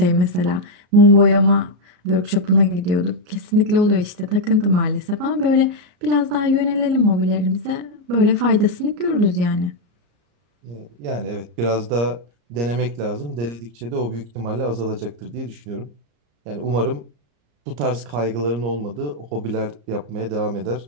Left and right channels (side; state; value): left; late; 34 ms